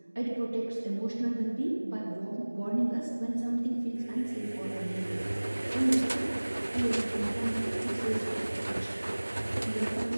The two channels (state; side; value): inverted; both; correlation -1.00